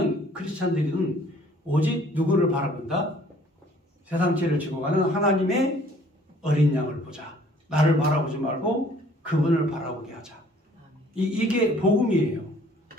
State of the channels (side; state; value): both; normal; correlation 0.57